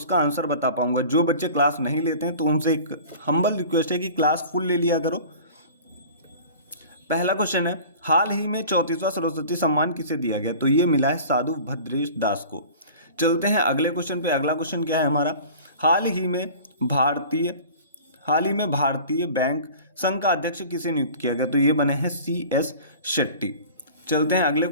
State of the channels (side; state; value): both; inverted; correlation -0.41